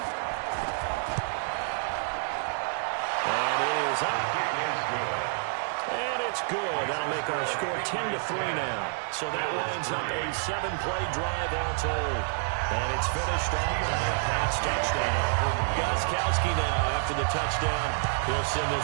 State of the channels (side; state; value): left; silent; digital silence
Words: And it is up. And it's good. That'll make our score 10-3 now. So that lines up a 7-play drive all told. And it's finished off by a pass touchdown. Gostkowski now, after the touchdown, he'll send